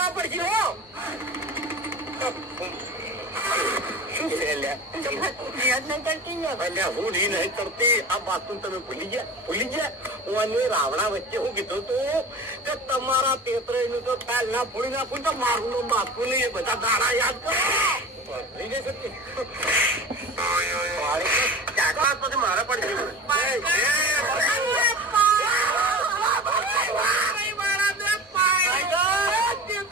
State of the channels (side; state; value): both; normal; correlation 0.35